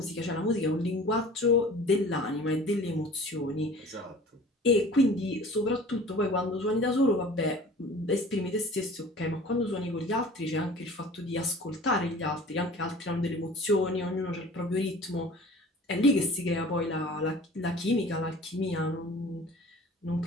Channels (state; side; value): normal; both; correlation 0.44